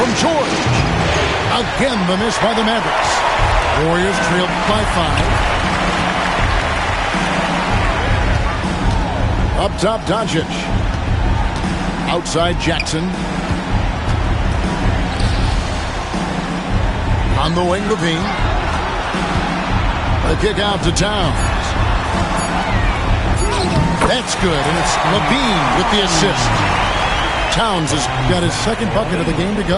George. Again, the miss by the Mavericks. Warriors trailed by 5. Up top, Doncic. Outside, Jackson. On the wing, Levine. The kick out to Towns. That's good, and it's Levine with the assist. Towns has got his second bucket of the game to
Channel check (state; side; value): identical; both; correlation 1.00